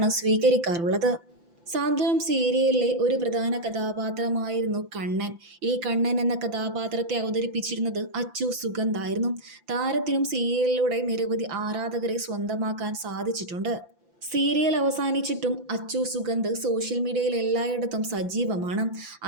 സ്വീകരിക്കാറുള്ളത്. സാന്ത്വനം സീരിയലിലെ ഒരു പ്രധാന കഥാപാത്രമായിരുന്നു കണ്ണൻ. ഈ കണ്ണൻ എന്ന കഥാപാത്രത്തെ അവതരിപ്പിച്ചിരുന്നത് അച്ചു സുഗന്ധായിരുന്നു. താരത്തിനും സീരിയലിലൂടെ നിരവധി ആരാധകരെ സ്വന്തമാക്കാൻ സാധിച്ചിട്ടുണ്ട്. സീരിയൽ അവസാനിച്ചിട്ടും അച്ചു സുഗന്ധ് സോഷ്യൽ മീഡിയയിൽ എല്ലായിടത്തും സജീവമാണ്.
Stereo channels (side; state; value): left; late; 5.9 ms